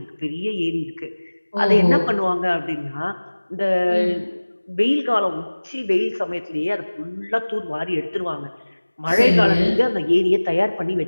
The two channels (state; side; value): inverted; both; correlation -1.00